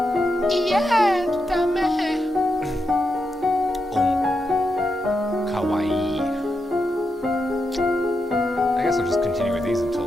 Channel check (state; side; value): normal; both; correlation 0.85